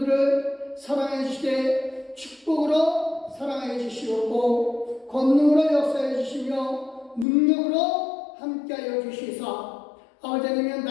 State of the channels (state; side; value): drops out; right; at 7.2 s